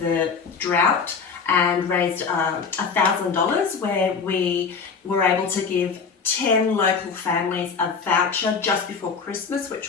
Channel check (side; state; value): right; quieter; 5.5 dB